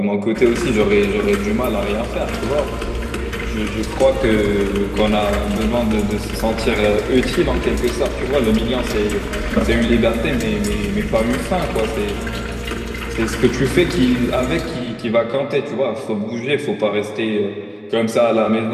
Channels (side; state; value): both; identical; correlation 1.00